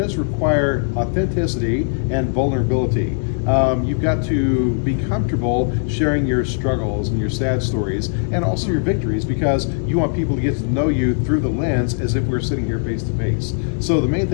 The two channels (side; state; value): right; silent; digital silence